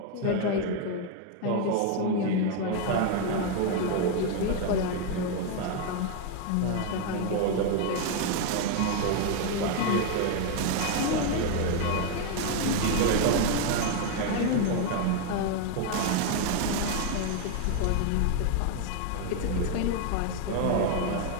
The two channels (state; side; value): different; both; correlation 0.01